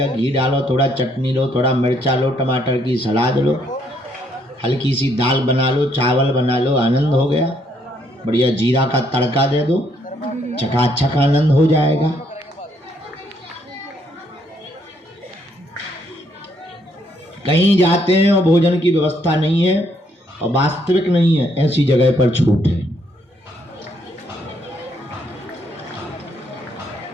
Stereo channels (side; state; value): both; normal; correlation 0.70